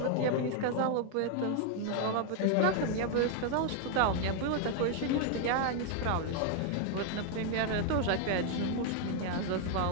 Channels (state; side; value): different; both; correlation 0.00